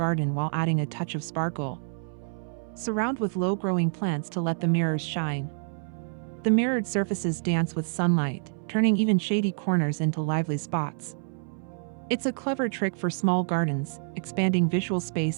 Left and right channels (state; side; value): silent; left; 60 dB below the other